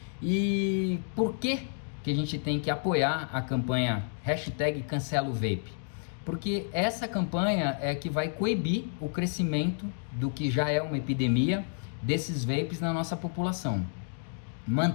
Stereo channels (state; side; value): silent; right; digital silence